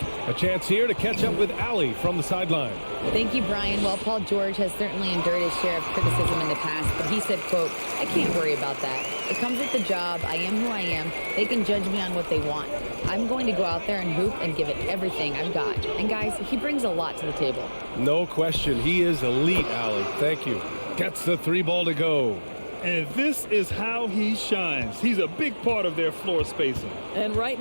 A chance here to catch up with Allie from the sideline. Thank you, Brian. Well, Paul George has certainly endured his share of criticism in the past, but he said, quote, "I can't worry about that. It comes with the job. I am who I am. They can judge me on what they want. I'm going to go out there and hoop and give it everything I've got." And guys, he brings a lot to the table. No question. He is elite, Allie. Thank you. Gets the 3 ball to go. And this is how he shines. He's a big part of their floor spacing. And right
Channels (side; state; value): both; inverted; correlation -1.00